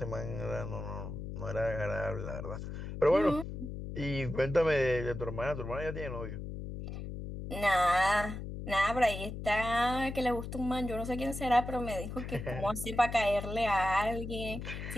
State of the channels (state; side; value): noise; left; hum, 7 dB below the sound